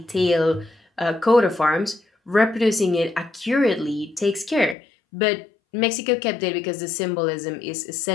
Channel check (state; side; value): drops out; right; at 4.8 s